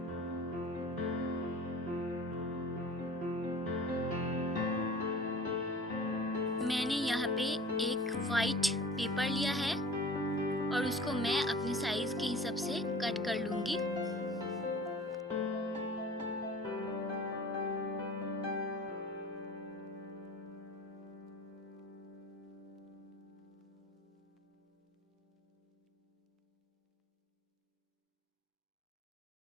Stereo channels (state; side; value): normal; both; correlation 0.42